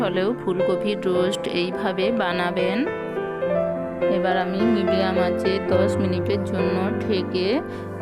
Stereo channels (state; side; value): identical; both; correlation 1.00